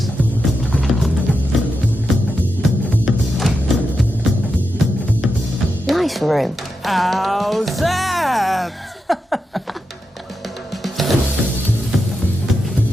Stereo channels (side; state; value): both; normal; correlation 0.88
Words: Nice room. How's that?